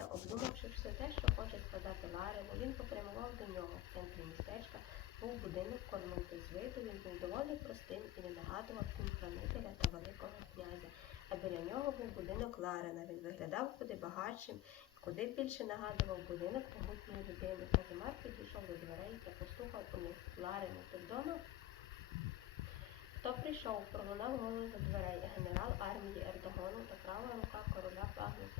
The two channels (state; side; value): quieter; right; 14.0 dB